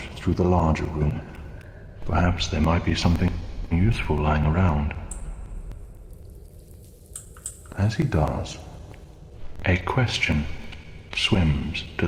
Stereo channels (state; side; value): identical; both; correlation 1.00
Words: through the larger room. Perhaps there might be something useful lying around. As he does, a question swims to